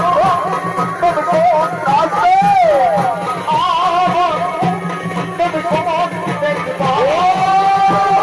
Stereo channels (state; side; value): identical; both; correlation 1.00